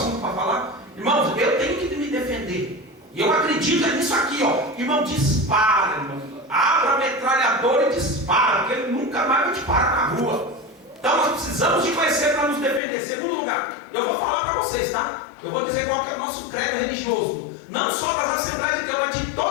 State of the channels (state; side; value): drops out; right; at 12.8 s